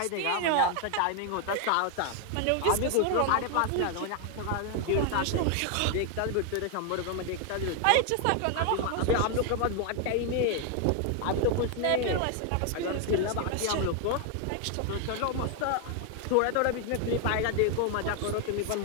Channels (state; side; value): different; both; correlation 0.00